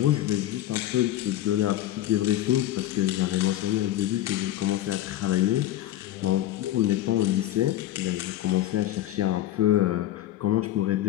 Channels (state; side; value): quieter; right; 13.3 dB